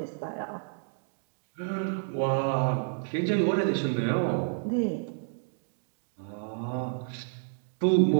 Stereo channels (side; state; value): left; silent; digital silence